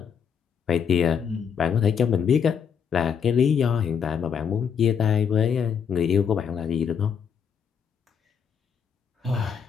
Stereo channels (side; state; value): right; quieter; 7.2 dB